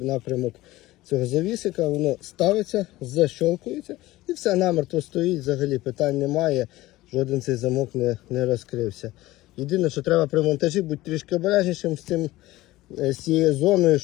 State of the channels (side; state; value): right; quieter; 17.7 dB